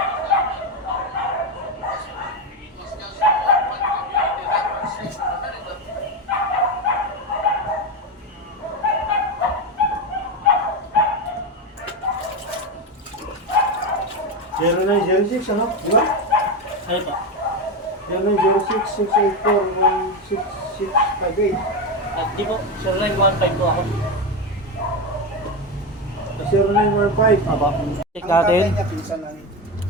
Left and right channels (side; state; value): both; normal; correlation 0.14